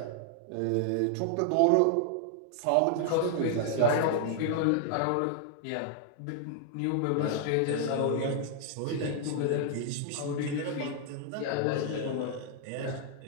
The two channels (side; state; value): both; different; correlation 0.00